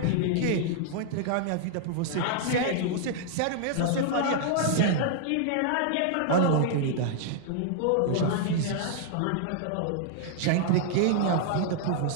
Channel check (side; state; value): both; different; correlation -0.01